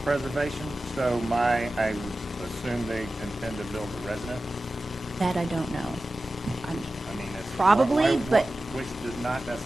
preservation, so I would assume they intend to build a residence? That I don't know. I mean, it's. Probably, but- Which does not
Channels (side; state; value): both; normal; correlation 0.95